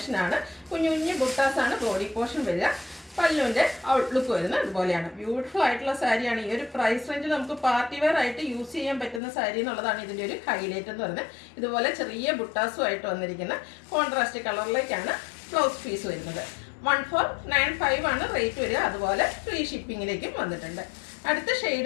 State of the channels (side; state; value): right; drops out; at 9.2 s